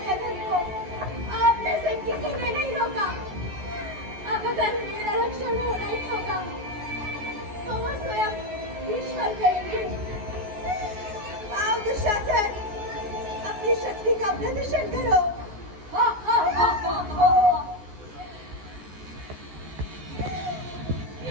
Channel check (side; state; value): left; late; 14 ms